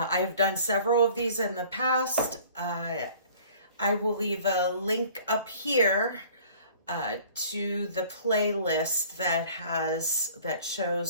done several of these in the past. I will leave a link up here to the playlist that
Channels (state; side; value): inverted; both; correlation -0.50